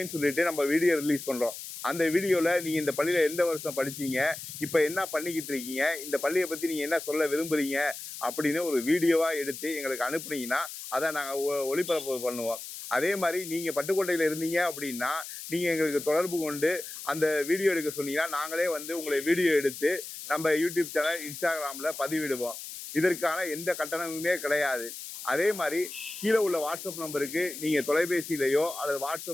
சொல்லிட்டு நம்ம வீடியோ ரிலீஸ் பண்றோம். அந்த வீடியோல நீங்க இந்த பள்ளியில எந்த வருஷம் படிச்சீங்க, இப்ப என்ன பண்ணிக்கிட்டு இருக்கீங்க, இந்த பள்ளியை பத்தி நீங்க என்ன சொல்ல விரும்புறீங்க அப்படின்னு ஒரு வீடியோவா எடுத்து எங்களுக்கு அனுப்புனீங்கன்னா அதை நாங்க ஒளிபரப்பு பண்ணுவோம். அதே மாதிரி நீங்க பட்டுக்கோட்டையில இருந்தீங்க அப்படின்னா நீங்க எங்களுக்கு தொடர்பு கொண்டு அந்த வீடியோ எடுக்க சொன்னீங்கன்னா நாங்களே வந்து உங்களை வீடியோ எடுத்து நம்ம யூடியூப் சேனல் இன்ஸ்டாகிராம்ல பதிவிடுவோம். இதற்கான எந்த கட்டணமுமே கிடையாது. அதே மாதிரி கீழே உள்ள வாட்ஸ்அப் நம்பருக்கு நீங்க தொலைபேசியிலையோ அல்லது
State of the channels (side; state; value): left; noise; hiss, 10 dB below the sound